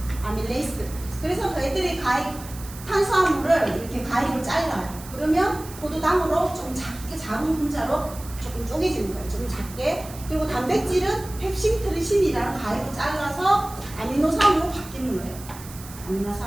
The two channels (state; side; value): noise; right; hiss, 16 dB below the sound